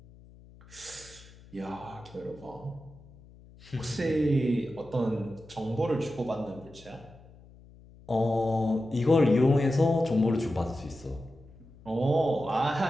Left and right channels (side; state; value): left; noise; hum, 23 dB below the sound